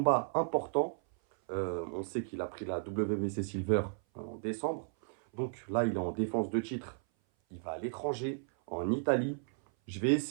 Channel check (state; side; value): silent; left; 55 dB below the other